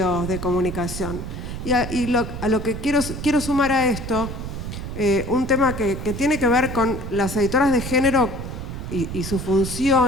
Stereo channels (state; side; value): noise; right; rumble, 7 dB below the sound